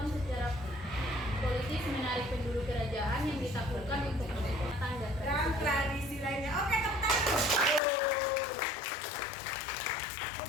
secara politis menarik penduduk kerajaan yang ditakutkan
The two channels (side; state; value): right; drops out; at 7.8 s